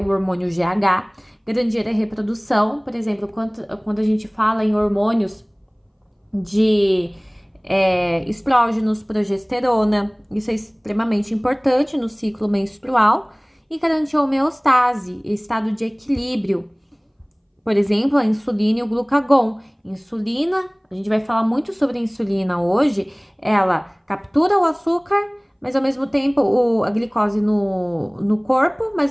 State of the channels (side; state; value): both; identical; correlation 1.00